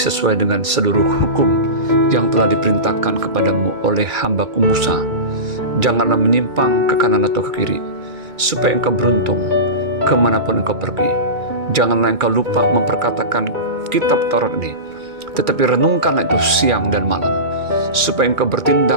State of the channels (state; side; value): late; left; 2.2 ms